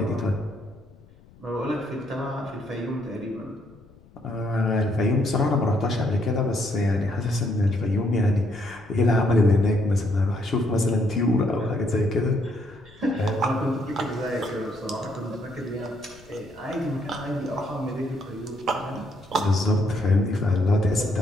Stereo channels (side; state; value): left; noise; rumble, 25 dB below the sound